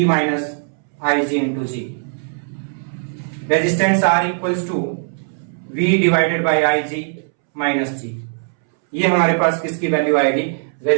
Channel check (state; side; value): silent; left; 66 dB below the other